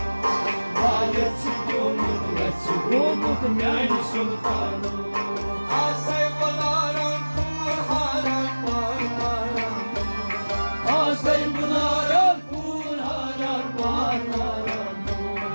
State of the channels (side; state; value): both; inverted; correlation -1.00